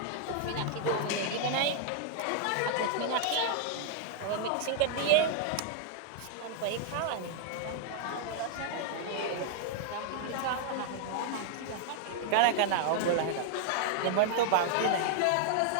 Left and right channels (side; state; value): both; different; correlation 0.00